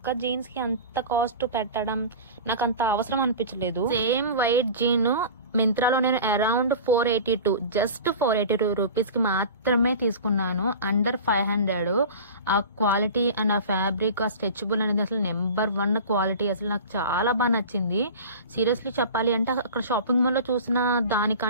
జీన్స్ కి అంత కాస్ట్ పెట్టడం నాకు అంత అవసరం అనిపించలేదు. సేమ్ వైట్ జీన్ మింత్రాలో నేను అరౌండ్ 482 జస్ట్ 482 రూపీస్ కి మాత్రమే తీసుకున్నాను. అండర్ 500. ఆ క్వాలిటీ అండ్ ఆ ఫ్యాబ్రిక్, ఆ స్ట్రెచబుల్ అనేది అసలు నెంబర్ 1 క్వాలిటీ. అసలు నాకు చాలా బాగా నచ్చింది. సీరియస్లీ చెప్పాలి అంటే అక్కడ షాపింగ్ మాల్ లో చూసిన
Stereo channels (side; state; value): both; inverted; correlation -0.35